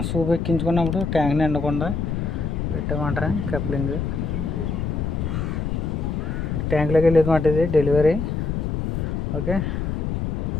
సూప్ ఎక్కించుకున్నప్పుడు ట్యాంక్ నిండకుండా పెట్టామంటారా కప్లింగ్. ట్యాంక్లోకి వెళ్ళేది మాట ఇది డెలివరీ. ఓకే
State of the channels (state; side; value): noise; left; rumble, 1 dB below the sound